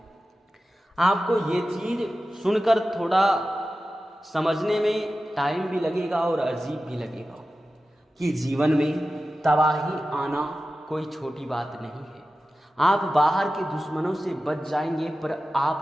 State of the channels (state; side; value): normal; both; correlation 0.94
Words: आपको ये चीज सुनकर थोड़ा समझने में टाइम भी लगेगा और अजीब भी लगेगा कि जीवन में तबाही आना कोई छोटी बात नहीं है। आप बाहर के दुश्मनों से बच जाएंगे पर